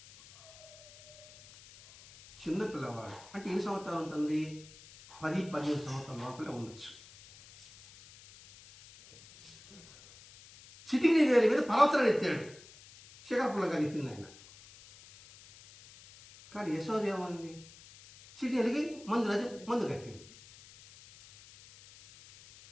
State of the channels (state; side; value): noise; left; hiss, 21 dB below the sound